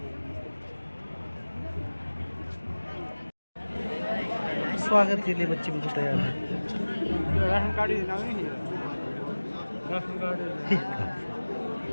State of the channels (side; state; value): both; inverted; correlation -1.00